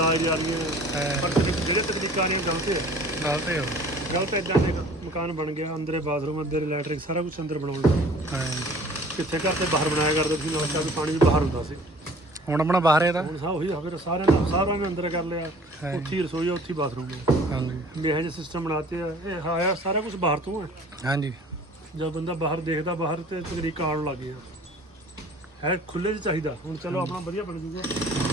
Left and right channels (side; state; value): both; normal; correlation 0.49